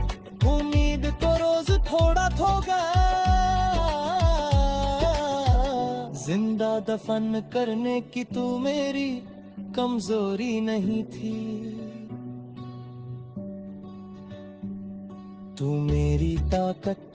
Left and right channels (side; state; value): both; identical; correlation 1.00